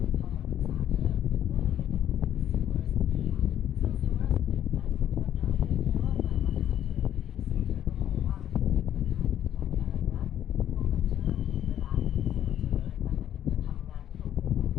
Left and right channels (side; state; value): right; quieter; 10.7 dB